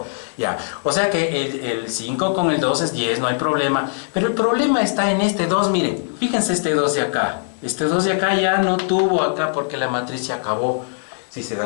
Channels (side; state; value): right; silent; 65 dB below the other